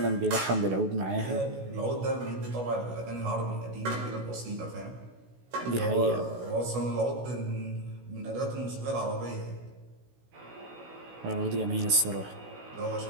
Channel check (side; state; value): left; late; 16 ms